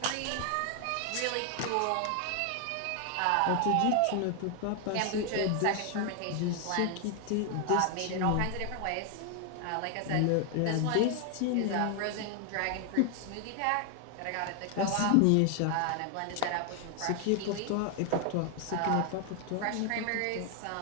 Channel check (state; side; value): different; both; correlation 0.00